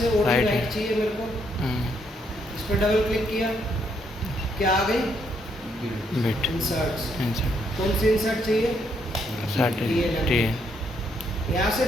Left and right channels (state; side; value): normal; both; correlation 0.73